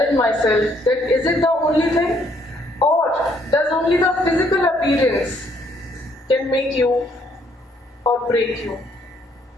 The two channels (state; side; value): normal; both; correlation 0.68